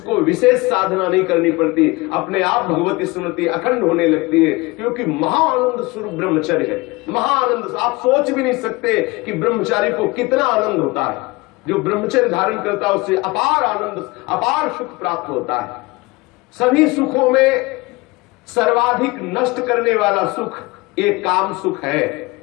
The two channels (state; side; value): quieter; right; 23.5 dB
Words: विशेष साधना नहीं करनी पड़ती, अपने आप भगवती स्मृति अखंड होने लगती है, क्योंकि महाआनंद स्वरूप ब्रह्मचर्य है। महाआनंद, आप सोच भी नहीं सकते कि ब्रह्मचारी को कितना आनंद होता है। जो ब्रह्मचर्य धारण करता है उससे अपार आनंद, अपार सुख प्राप्त होता है। सभी सुखों में सर्वाधिक नष्ट करने वाला सुख एक काम सुख है,